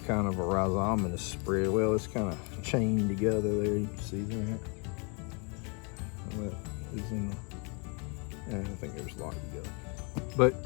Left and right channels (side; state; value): right; quieter; 34.2 dB